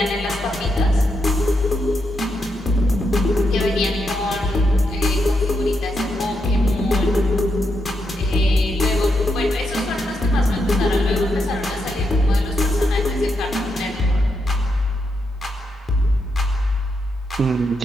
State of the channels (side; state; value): both; normal; correlation 0.82